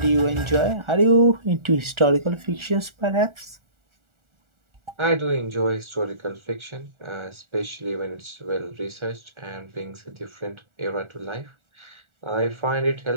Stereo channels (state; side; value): late; left; 1.4 ms